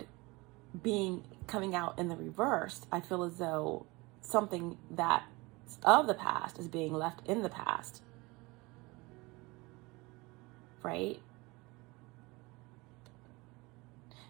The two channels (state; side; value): quieter; left; 23.9 dB